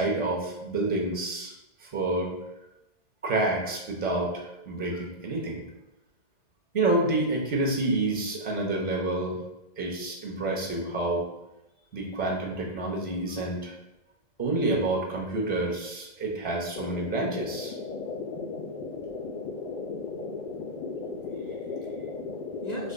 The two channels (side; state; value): right; late; 1.5 ms